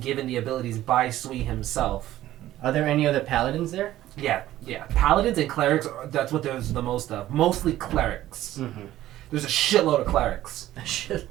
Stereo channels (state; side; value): quieter; left; 14.1 dB